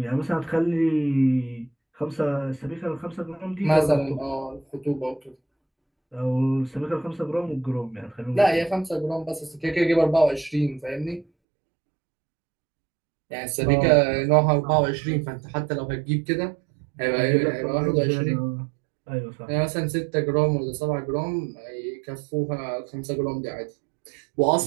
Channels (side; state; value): left; drops out; at 11.2 s